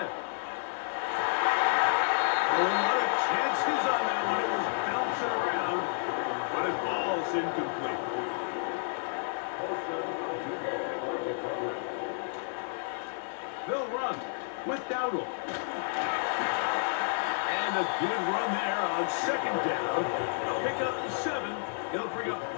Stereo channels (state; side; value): silent; right; 57 dB below the other